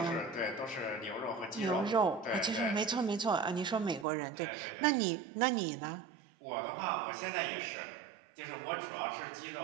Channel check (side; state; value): left; drops out; at 4.0 s